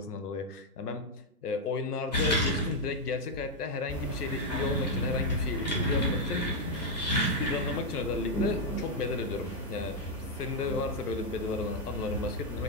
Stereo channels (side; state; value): both; normal; correlation 0.00